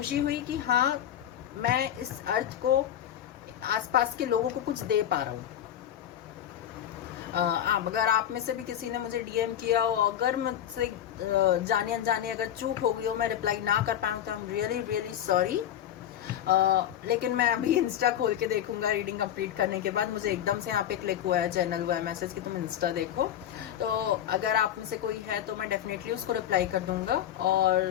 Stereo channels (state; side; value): quieter; right; 10.7 dB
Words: हुई कि हाँ मैं इस अर्थ को, आसपास के लोगों को कुछ दे पा रहा हूँ। अगर आप में से भी किसी ने मुझे डीएम किया हो, अगर मुझसे जाने अनजाने अगर चूक हो गई हो, मैं रिप्लाई ना कर पाऊँ तो आई एम रियली रियली सॉरी। लेकिन मैं अभी इंस्टा खोल के देखूंगा रीडिंग कंप्लीट करने के बाद। मुझे एकदम से यहाँ पे क्लिक हुआ है, चैनल हुआ है मैसेज कि तुम इंस्टा देखो, तो अगर आप में से कोई है तो मैं डेफिनेटली उसको रिप्लाई कर दूंगा।